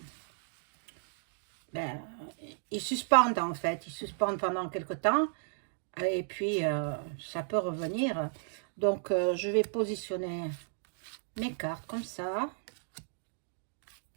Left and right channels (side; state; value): left; silent; digital silence